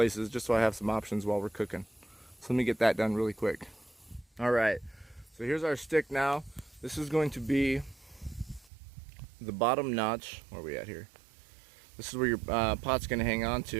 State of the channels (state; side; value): drops out; left; at 8.7 s